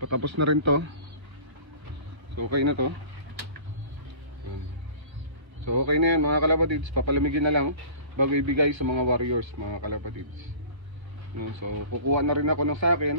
patapos na rin to. So okay na to. So okay na yan mga kalapatids. Papalamigin na lang bago ibigay sa mga warriors mga kalapatids, no? So kukuha na rin ako ng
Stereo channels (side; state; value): left; late; 1.5 ms